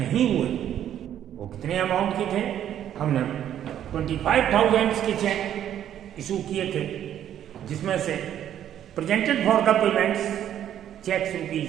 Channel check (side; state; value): left; quieter; 10.6 dB